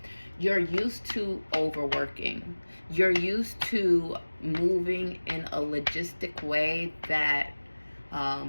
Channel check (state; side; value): inverted; both; correlation -1.00